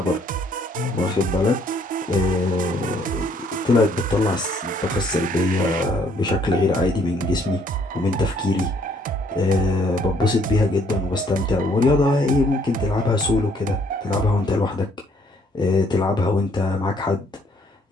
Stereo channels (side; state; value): both; normal; correlation 0.65